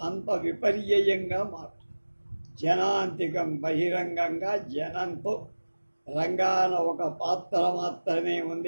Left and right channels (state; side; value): inverted; both; correlation -1.00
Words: అంత విపర్యయంగా మాట్లాడు. జనాంతికం బహిరంగంగా జనంతో, రంగాన ఒక పాత్ర మాత్రమే